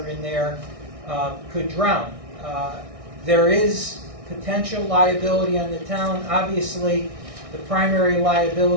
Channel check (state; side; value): late; left; 1.6 ms